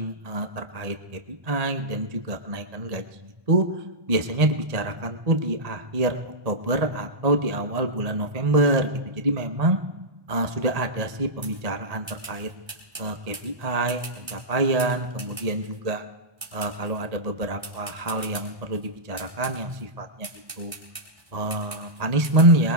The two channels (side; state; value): left; late; 1.8 ms